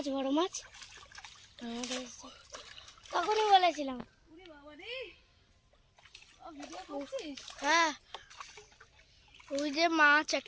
বড় মাছ, তখনই বলেছিলাম। ওরে বাবা রে, ভিডিও করছিস? হ্যাঁ, ওই যে মাছ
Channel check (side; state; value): both; identical; correlation 1.00